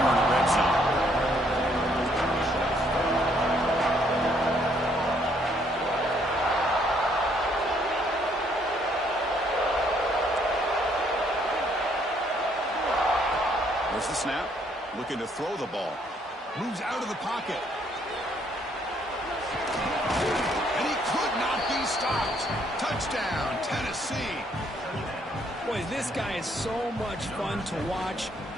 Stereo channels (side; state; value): both; normal; correlation 0.68